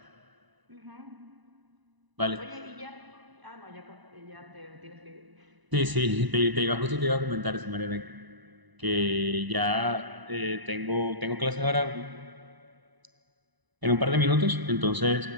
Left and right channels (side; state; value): left; late; 1.0 ms